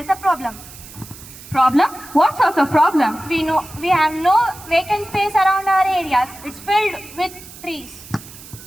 a problem. Problem? What sort of problem? We have no vacant space around our areas. It's filled with trees.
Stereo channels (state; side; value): noise; right; hiss, 17 dB below the sound